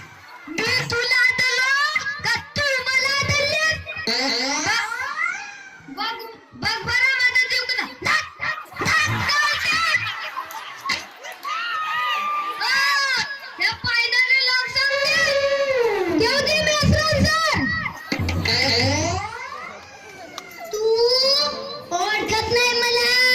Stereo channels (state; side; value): identical; both; correlation 1.00